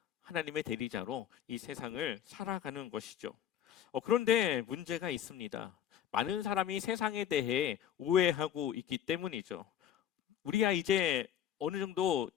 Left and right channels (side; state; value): right; quieter; 10.1 dB